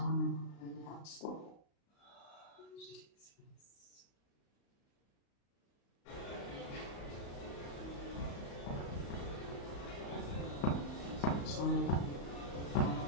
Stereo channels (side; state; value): right; late; 35 ms